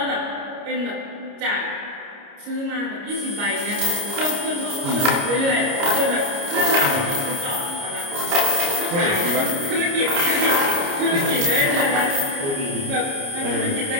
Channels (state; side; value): late; left; 29 ms